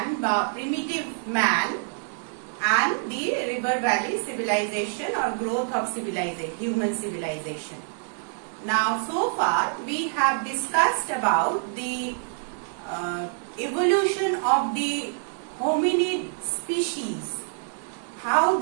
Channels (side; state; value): left; silent; 61 dB below the other